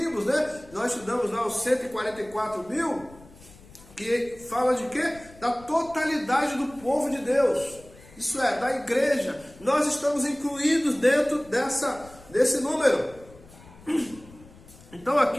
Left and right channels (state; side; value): noise; left; rumble, 22 dB below the sound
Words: né? Nós estudamos lá os 144 mil, que fala de quê? Da totalidade do povo de Deus. Isso é, da igreja. Nós estamos incluídos dentro desse número. Então